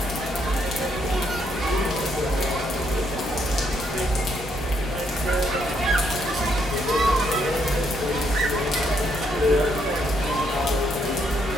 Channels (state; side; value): normal; both; correlation 0.74